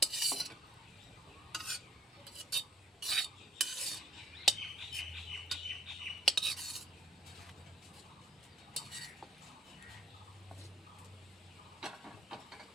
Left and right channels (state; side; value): normal; both; correlation 0.58